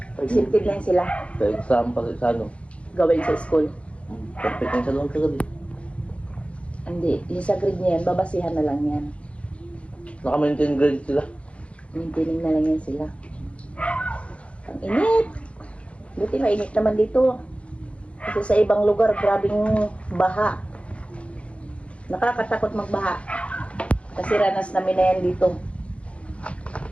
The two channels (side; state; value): right; late; 0.061 ms